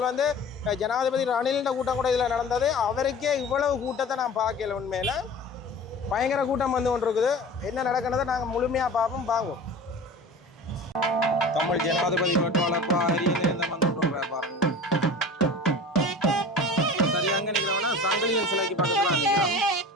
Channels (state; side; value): normal; both; correlation 0.38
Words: வந்து ஜனாதிபதி ரணிலின் கூட்டம் கூட இதில் நடந்தது. அவருக்கே இவ்வளவு கூட்டத்தை நான் பார்க்கல. உண்மையில் பயங்கர கூட்டம் வந்து கொண்டு இருக்குது. என்ன நடக்கிறத நாங்கள் முழுமையாக பார்ப்போம். வாங்குவோம். தமிழ் ஜனாதிபதி வேட்பாளர் அரியநேந்திரம் வந்து பாருங்க. சரியாக நிற்கிறவனா சங்கிலியன் சிலைக்கு பக்கத்தில் நிற்கிறோம்.